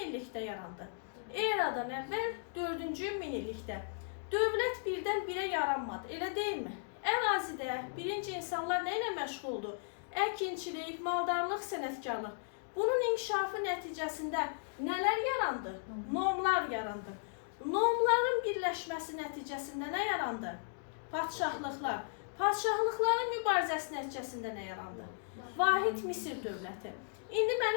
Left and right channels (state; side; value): silent; right; digital silence